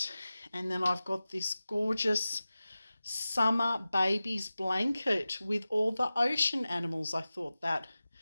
And then I've got this gorgeous summer babies blanket with all the ocean animals. I thought that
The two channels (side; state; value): both; inverted; correlation -0.96